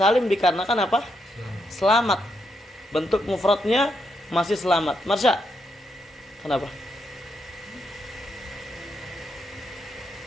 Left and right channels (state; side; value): normal; both; correlation 0.80